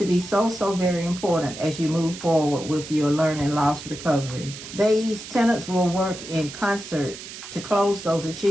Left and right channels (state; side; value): noise; right; hiss, 12 dB below the sound